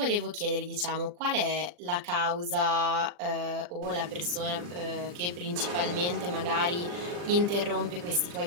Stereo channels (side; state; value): left; late; 40 ms